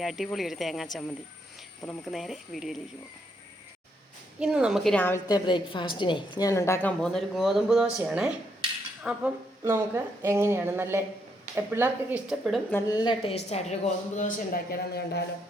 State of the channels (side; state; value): both; normal; correlation 0.76